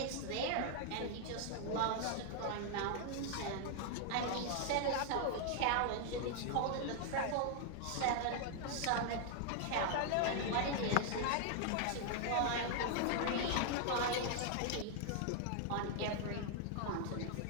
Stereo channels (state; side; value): different; both; correlation 0.00